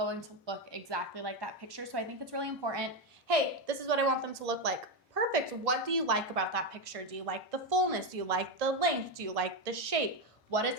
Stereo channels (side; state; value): both; normal; correlation 0.10